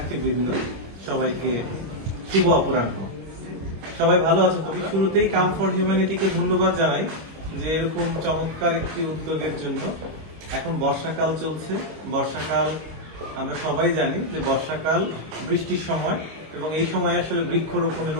সবাইকে শুভ অপরাহ্ন। সবাই ভালো আছেন? তবে শুরুতেই কাম ফর হিউম্যানিটিকে ধন্যবাদ জানাই যে এরকম চমৎকার একটি উদ্যোগের জন্য। এখন বর্ষাকাল চলছে। বর্ষাকাল আমরা সবাই জানি যে বর্ষাকাল বৃষ্টির সময়, এবং এই সময় আসলে বৃক্ষরোপণের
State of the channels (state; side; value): late; left; 25 ms